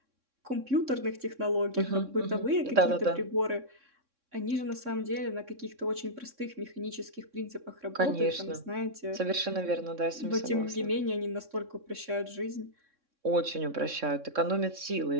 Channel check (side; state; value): left; late; 3.6 ms